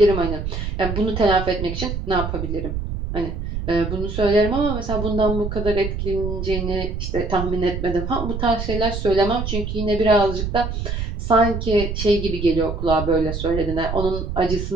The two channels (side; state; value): right; noise; rumble, 4 dB below the sound